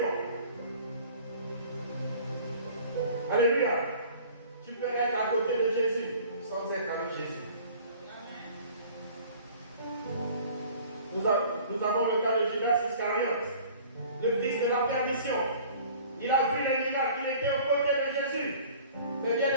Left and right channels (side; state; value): both; inverted; correlation -0.48